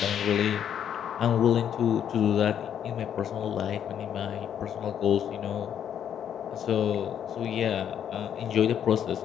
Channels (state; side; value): quieter; right; 9.1 dB